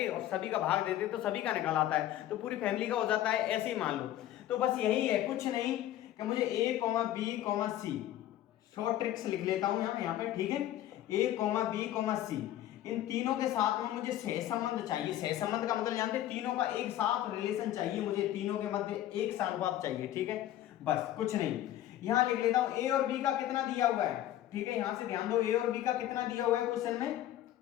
और सभी का भाग देते हैं, तो सभी का निकल आता है, तो पूरी फैमिली का हो जाता है। ऐसे ही मान लो, तो बस यही है, कुछ नहीं कि मुझे ए, बी, सी, शॉर्ट ट्रिक्स लिख लेता हूं यहाँ पे, ठीक है। ए, बी, सी, इन तीनों के साथ में मुझे सहसंबंध चाहिए। सहसंबंध का मतलब जानते हैं, तीनों का एक साथ रिलेशन चाहिए मुझे, तीनों के मध्य एक सानुपात चाहिए, ठीक है। बस कुछ नहीं, यहां लिख लेता हूं ए और बी का कितना दिया हुआ है, ठीक है। यहां से ध्यान दो, ए और बी का कितना दिया हुआ है क्वेश्चन में,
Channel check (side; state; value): right; quieter; 12.9 dB